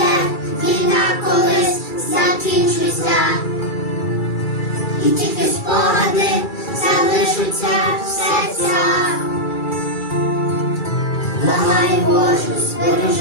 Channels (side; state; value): right; late; 2.3 ms